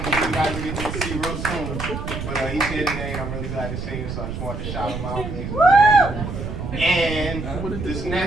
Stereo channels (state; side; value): noise; right; rumble, 6 dB below the sound